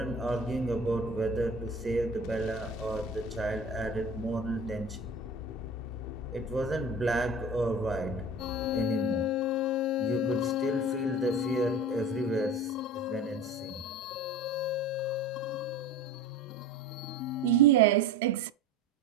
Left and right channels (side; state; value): both; normal; correlation 0.36